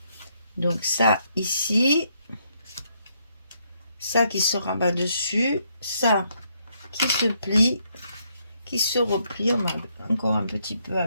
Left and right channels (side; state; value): both; inverted; correlation -0.74